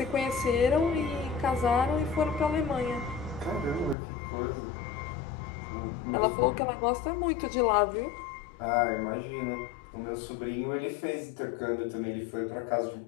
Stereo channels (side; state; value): right; drops out; at 4.0 s